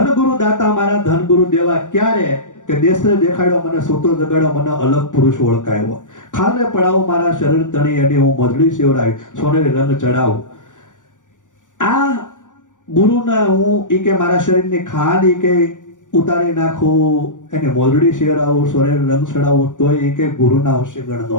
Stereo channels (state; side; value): late; right; 0.87 ms